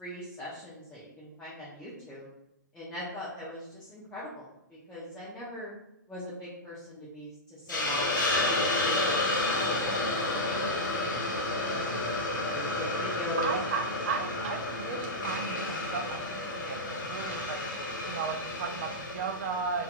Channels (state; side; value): normal; both; correlation -0.06